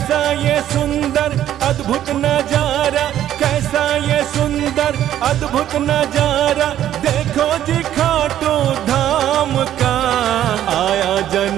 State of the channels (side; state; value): left; quieter; 11.6 dB